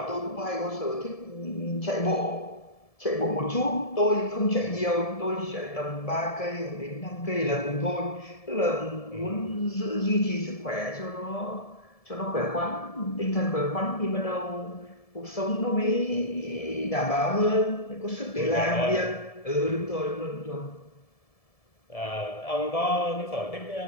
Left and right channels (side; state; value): right; late; 1.7 ms